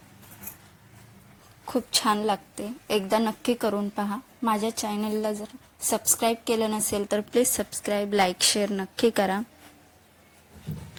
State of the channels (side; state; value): both; identical; correlation 1.00